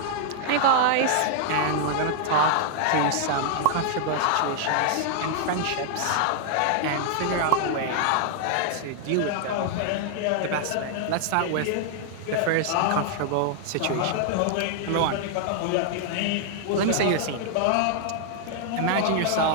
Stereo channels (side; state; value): both; different; correlation -0.01